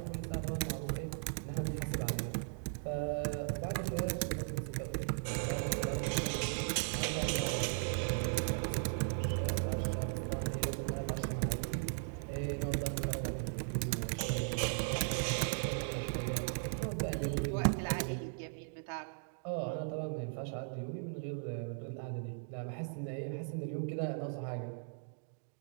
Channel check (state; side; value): silent; left; digital silence